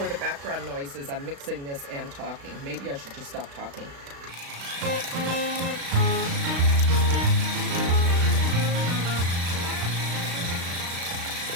the background noises. I'm mixing this and talking. Maybe I should just stop talking.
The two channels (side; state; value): left; late; 36 ms